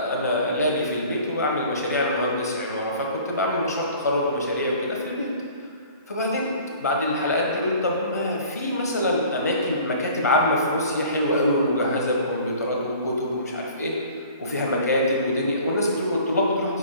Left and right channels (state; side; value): inverted; both; correlation -0.48